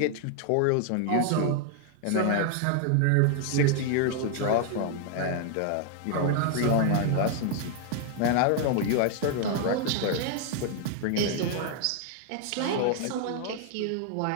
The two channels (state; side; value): different; both; correlation 0.00